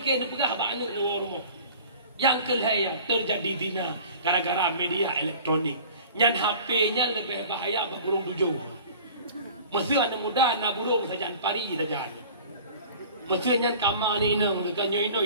nak pegah bak anak nuang rumah. Yang kelihatan terjadi zina gara-gara media elektronik. Yang HP-nya lebih bahaya bagi burung tujuh. Mesti anak muda nak burung saja pari saja. Mesti yang kamar ni nak dekat nyoy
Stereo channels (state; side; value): inverted; both; correlation -0.44